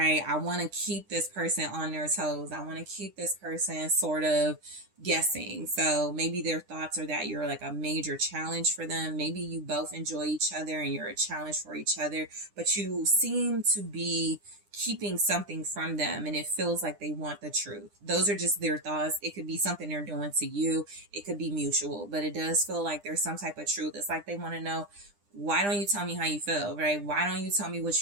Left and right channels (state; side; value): late; left; 9.9 ms